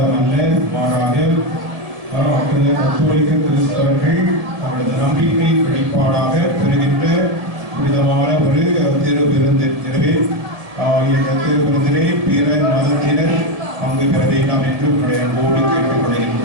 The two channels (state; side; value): late; left; 1.8 ms